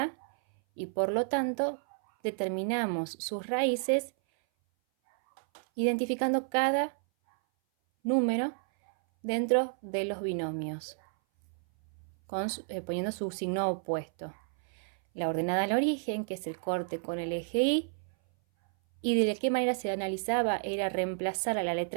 y por lo tanto determinamos sus raíces identificando cada número dentro de los binomios, poniendo su signo opuesto. La ordenada al origen, que es el corte con el eje y de qué manera se analizaba era reemplazar a la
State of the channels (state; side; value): silent; left; 57 dB below the other